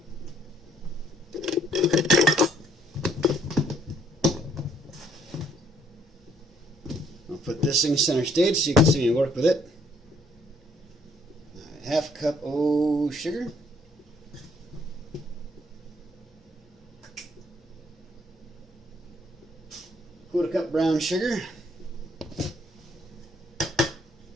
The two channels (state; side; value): normal; both; correlation 0.65